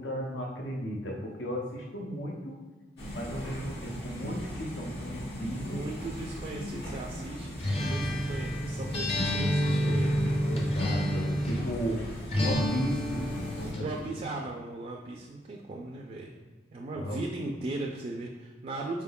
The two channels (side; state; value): both; normal; correlation 0.77